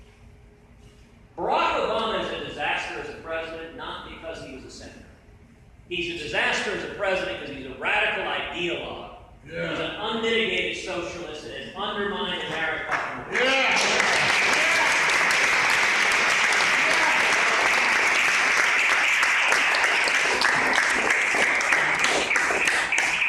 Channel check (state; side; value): identical; both; correlation 1.00